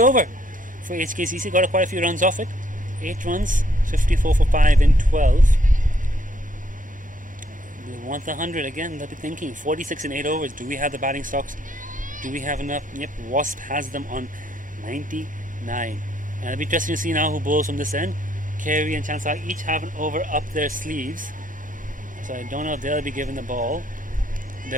over for HKCC. Got quite a few runs off it. 8 runs, 54 for 5 in 12. They want the 100 again. They'll be thinking 46 in 8 overs. Do we have the batting stocks? Do we have enough? Yep, Wasp has them on 99. And it'll be interesting to see now who bowls from this end. Carey and Chansar each have an over up their sleeves. So I don't know if they'll be given the ball. I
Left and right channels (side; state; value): both; normal; correlation 0.69